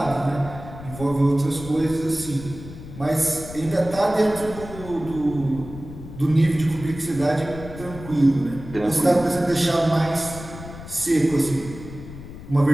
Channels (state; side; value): noise; left; rumble, 13 dB below the sound